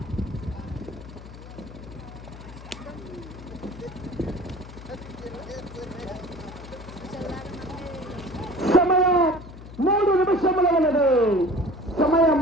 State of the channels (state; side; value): noise; left; hum, 15 dB below the sound